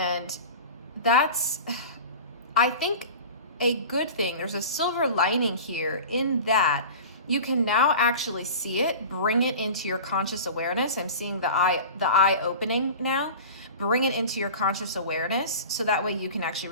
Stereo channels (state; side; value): inverted; both; correlation -0.35